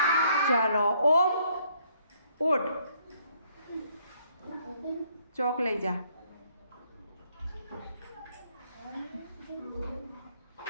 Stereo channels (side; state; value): both; inverted; correlation -0.67